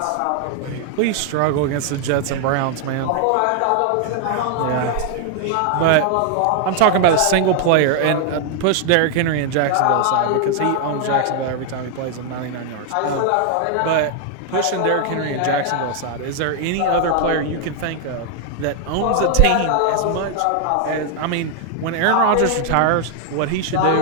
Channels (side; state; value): both; different; correlation 0.00